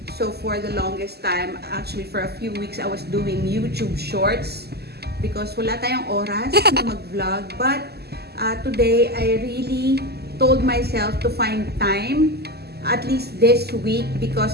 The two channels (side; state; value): left; late; 0.47 ms